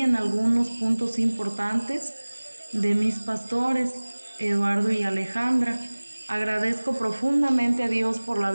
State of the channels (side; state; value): both; inverted; correlation -1.00